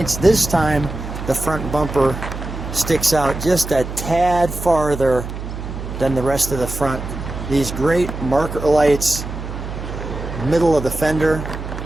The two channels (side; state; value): right; noise; hum, 8 dB below the sound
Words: This time the front bumper sticks out just a tad farther than the rest of the front. These great marker lights, middle of the fender,